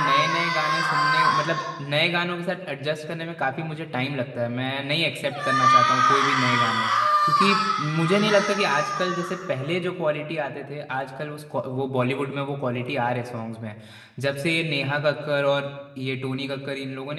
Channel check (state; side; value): identical; both; correlation 1.00